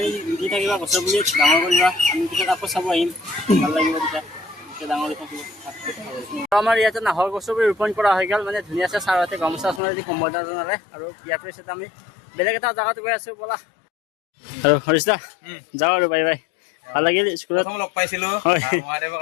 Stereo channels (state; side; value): drops out; right; at 9.8 s